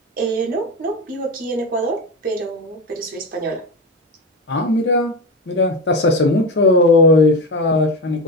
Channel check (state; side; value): normal; both; correlation 0.20